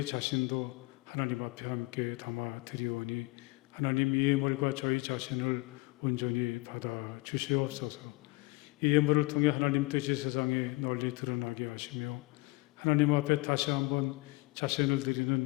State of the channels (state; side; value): quieter; right; 24.0 dB